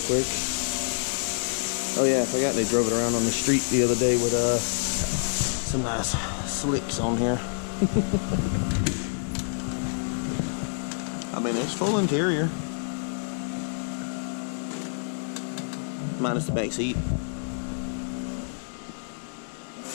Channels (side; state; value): right; silent; digital silence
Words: Oh yeah, I forgot they drove it around on the street the other day with some nice slicks on here. I mean, it's full interior, minus the back seat.